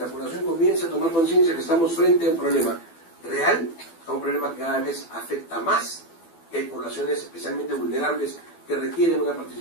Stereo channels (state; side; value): late; right; 12 ms